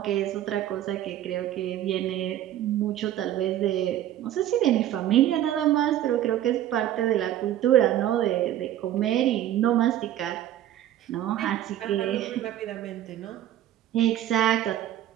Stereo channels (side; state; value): left; quieter; 12.3 dB